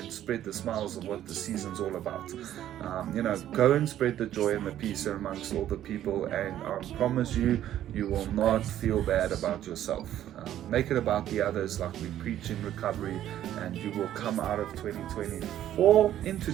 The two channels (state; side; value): quieter; left; 11.9 dB